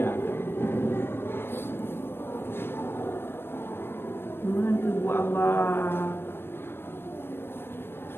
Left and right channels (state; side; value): late; right; 0.11 ms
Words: Mana buat Allah.